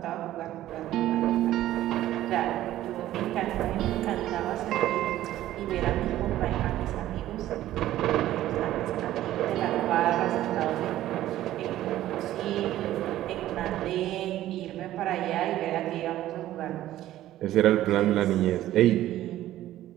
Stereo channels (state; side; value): quieter; left; 13.9 dB